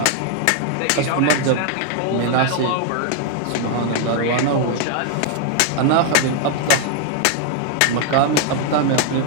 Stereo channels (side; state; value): both; different; correlation 0.00